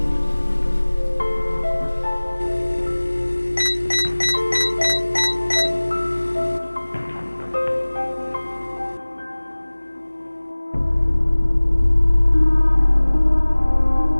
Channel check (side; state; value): both; inverted; correlation -1.00